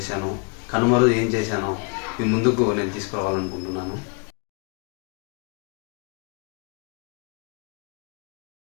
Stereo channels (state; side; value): quieter; right; 35.3 dB